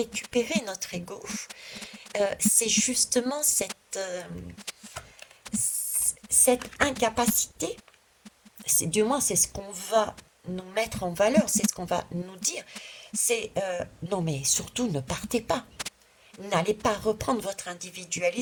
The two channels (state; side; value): identical; both; correlation 1.00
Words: notre ego, c'est justement cette incapacité. Du moins, c'est ce qu'on va nous mettre en valeur, c'est ce qu'on va nous dire. C'est non, mais surtout ne partez pas. N'allez pas reprendre votre